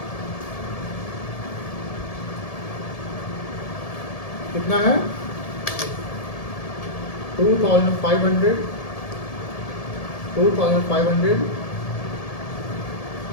कितना है? 2500 2500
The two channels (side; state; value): right; late; 1.7 ms